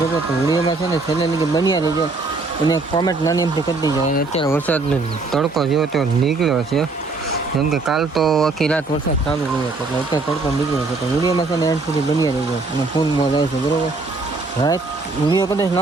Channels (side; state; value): left; quieter; 3.6 dB